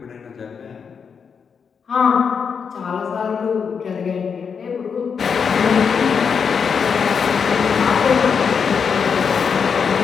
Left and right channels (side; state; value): right; quieter; 6.3 dB